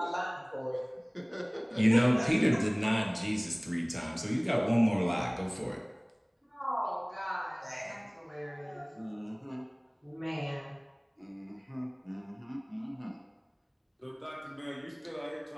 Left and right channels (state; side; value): identical; both; correlation 1.00